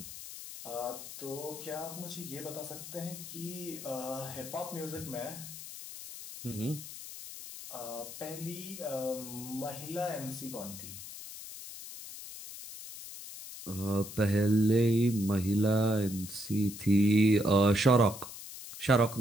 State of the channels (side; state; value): left; noise; hiss, 12 dB below the sound